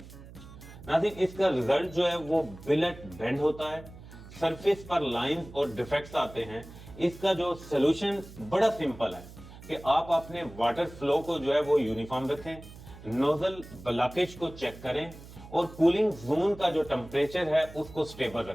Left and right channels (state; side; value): noise; right; hum, 17 dB below the sound